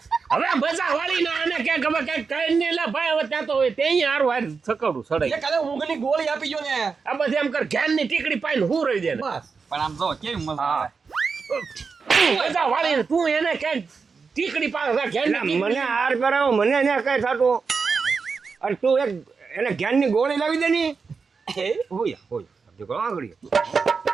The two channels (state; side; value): quieter; left; 5.1 dB